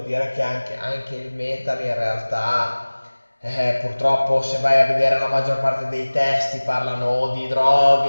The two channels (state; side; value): inverted; both; correlation -1.00